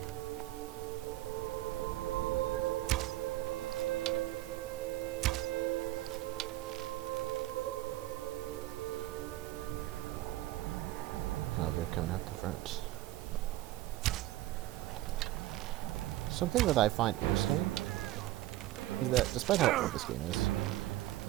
Oh, they're coming out the front. Something that I find interesting is that, despite how old this game is,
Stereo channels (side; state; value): left; quieter; 16.0 dB